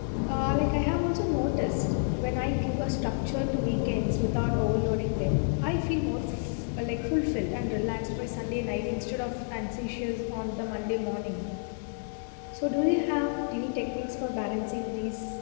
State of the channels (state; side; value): silent; right; 58 dB below the other